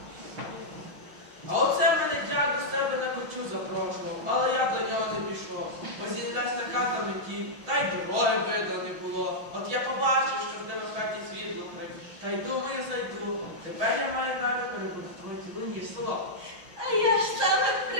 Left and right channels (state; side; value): late; left; 6.4 ms